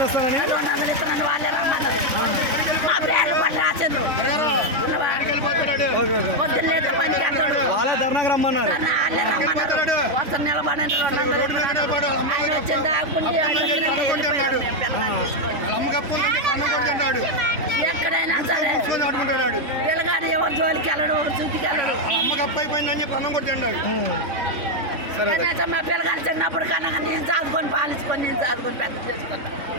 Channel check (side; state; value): left; late; 3.5 ms